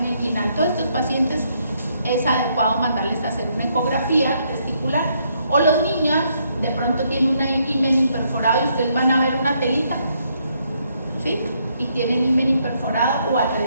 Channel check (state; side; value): inverted; both; correlation -0.73